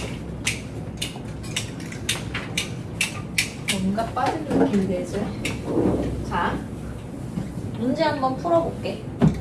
뭔가 빠진 느낌이 되죠? 자, 문제 한번 풀어볼게.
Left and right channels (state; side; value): identical; both; correlation 1.00